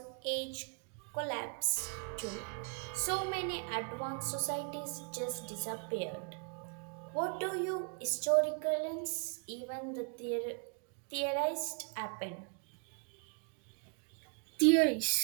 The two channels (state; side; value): quieter; left; 38.0 dB